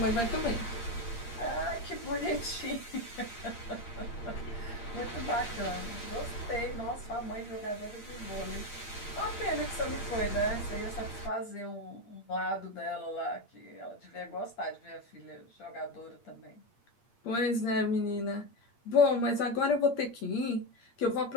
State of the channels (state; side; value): late; right; 8.6 ms